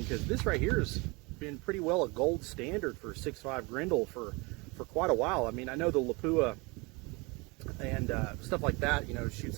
because this right here has been pretty well a gold standard for 6.5 Grendel for quite a while. I mean, I know the Lapua and stuff like that, you know,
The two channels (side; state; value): left; quieter; 26.8 dB